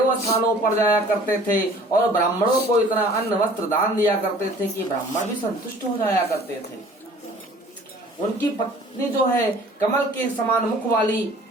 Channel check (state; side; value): normal; both; correlation 0.50